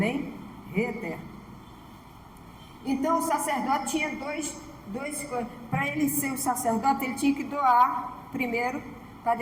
Rei eterno. Então o sacerdote tinha dois coisas. Para ele ser o sacerdote, ele tinha que doar primeiro, para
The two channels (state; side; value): identical; both; correlation 1.00